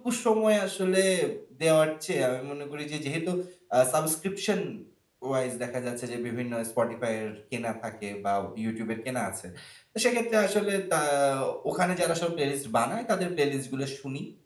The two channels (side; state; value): both; identical; correlation 1.00